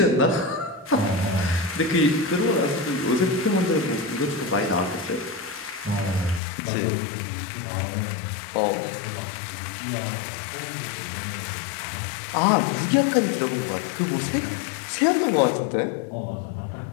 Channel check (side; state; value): right; drops out; at 6.4 s